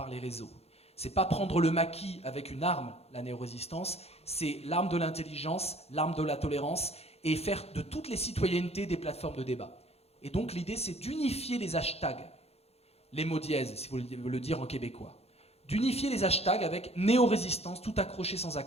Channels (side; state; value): right; late; 0.30 ms